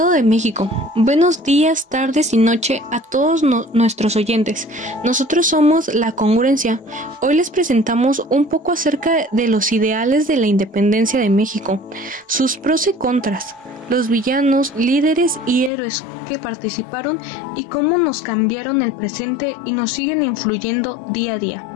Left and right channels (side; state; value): right; drops out; at 15.7 s